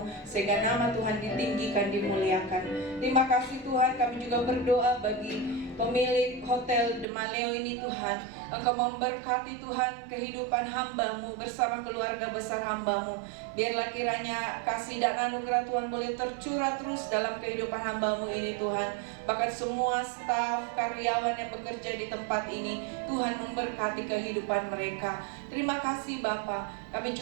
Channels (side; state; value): left; drops out; at 7.1 s